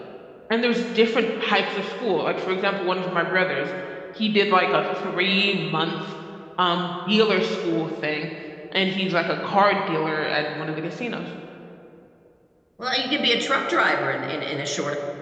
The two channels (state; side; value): identical; both; correlation 1.00